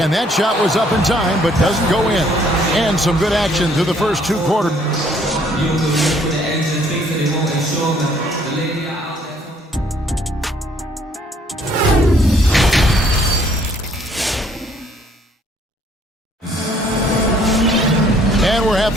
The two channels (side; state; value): both; normal; correlation 0.63